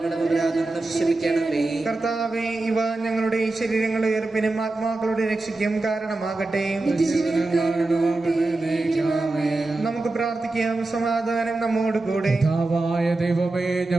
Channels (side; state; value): left; quieter; 3.1 dB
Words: കർത്താവേ, ഇവ ഞങ്ങളുടെ ശരീരങ്ങളുടെ ഉയർപ്പിനും ആത്മാക്കളുടെ രക്ഷയ്ക്കും കാരണമാകട്ടെ. നമുക്ക് പ്രാർത്ഥിക്കാം. സമാധാനം നമ്മോട് കൂടെ. കർത്താവായ ദൈവമേ,